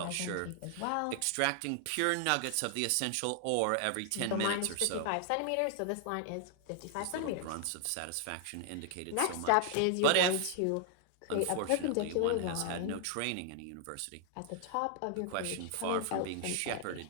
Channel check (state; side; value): different; both; correlation 0.00